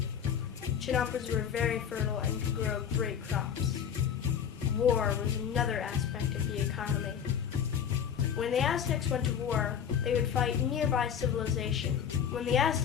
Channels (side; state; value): right; quieter; 8.2 dB